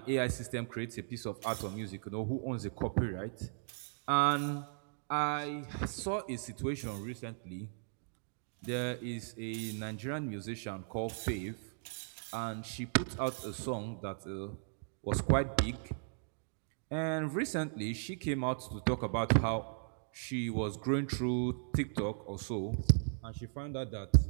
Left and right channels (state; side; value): silent; left; digital silence